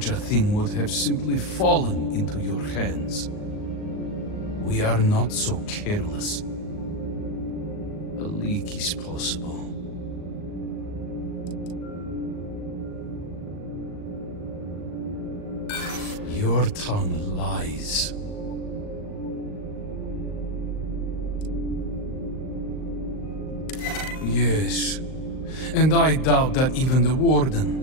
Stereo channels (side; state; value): right; late; 38 ms